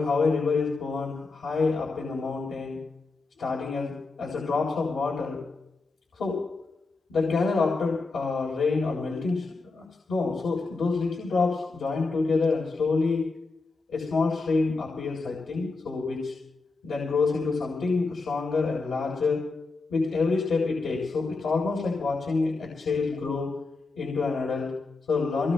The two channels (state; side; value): quieter; right; 3.8 dB